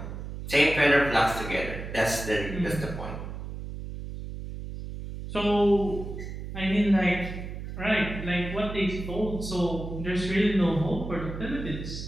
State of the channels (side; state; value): right; noise; hum, 8 dB below the sound